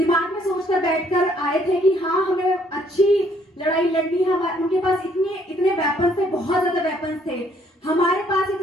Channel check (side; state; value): both; normal; correlation 0.65